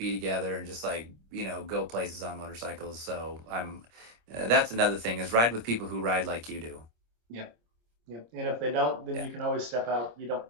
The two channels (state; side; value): late; left; 26 ms